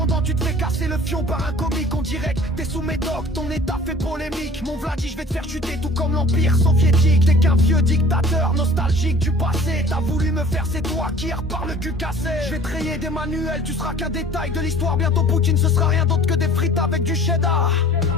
tu te fais casser le fion par un comique. On dirait que t'es sous médoc, ton état fait polémique. Mon Vladi, je vais te faire chuter tout comme l'Empire soviétique. T'es qu'un vieux dictateur nostalgique du passé. T'as voulu me faire, c'est toi qui repars le cul cassé. Je vais te rayer des manuels, tu seras qu'un détail de l'histoire. Bientôt Poutine, ce sera rien d'autre que des frites avec du cheddar.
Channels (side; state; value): both; normal; correlation 0.48